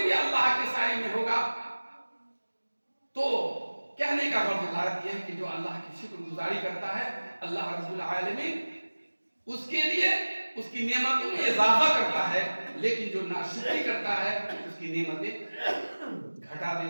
بھی اللہ کے سائے میں ہوگا. تو کہنے کا غرض یہ ہے کہ جو اللہ کی شکر گزاری کرتا ہے اللہ رب العالمین اس کے لیے اس کی نعمتوں میں اضافہ کرتا ہے, لیکن جو ناشکری کرتا ہے اس کی نعمتیں گھٹا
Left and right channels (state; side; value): inverted; both; correlation -1.00